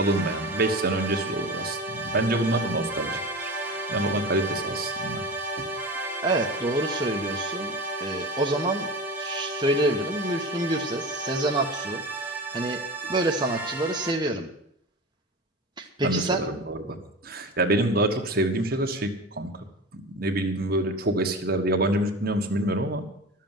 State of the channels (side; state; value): both; normal; correlation 0.30